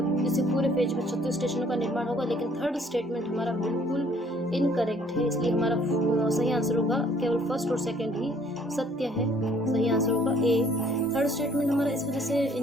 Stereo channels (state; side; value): normal; both; correlation 0.60